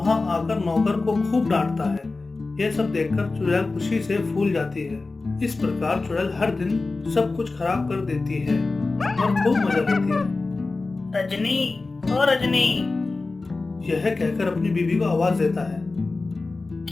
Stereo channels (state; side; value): quieter; right; 3.6 dB